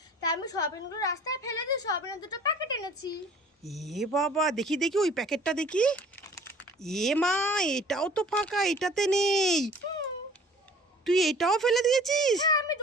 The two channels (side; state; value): both; normal; correlation 0.49